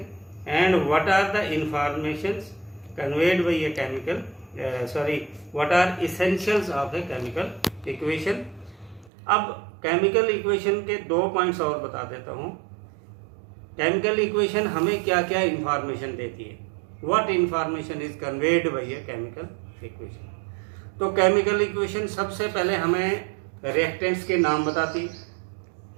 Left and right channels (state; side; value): drops out; left; at 9.1 s